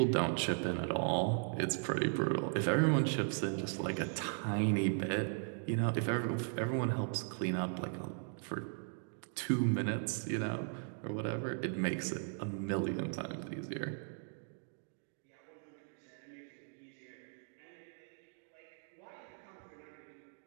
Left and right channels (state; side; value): silent; left; 53 dB below the other